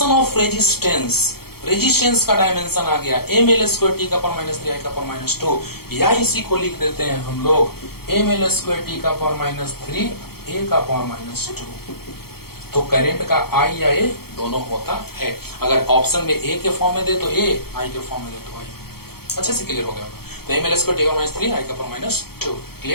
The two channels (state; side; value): late; right; 0.95 ms